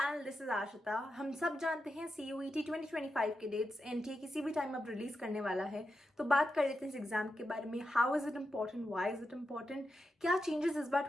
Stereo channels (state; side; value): normal; both; correlation 0.88